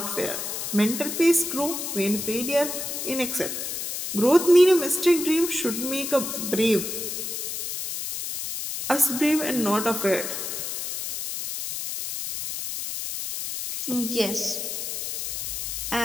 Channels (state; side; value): noise; left; hiss, 4 dB below the sound